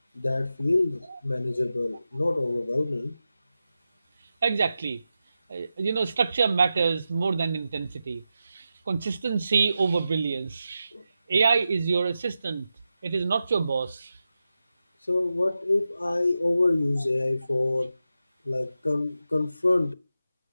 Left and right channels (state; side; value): inverted; both; correlation -0.91